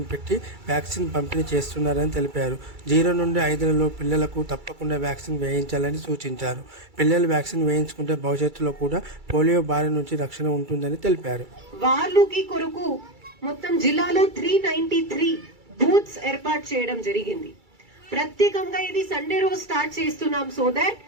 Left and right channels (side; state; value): left; late; 2.3 ms